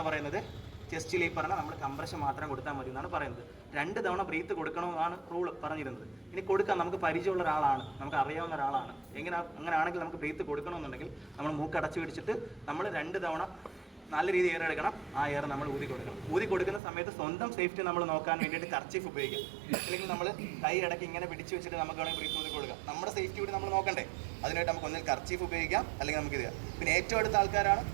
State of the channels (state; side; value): drops out; left; at 16.8 s